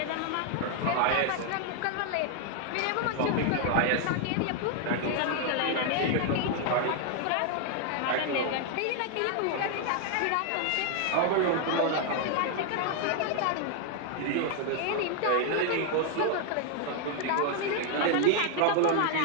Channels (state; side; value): different; both; correlation 0.00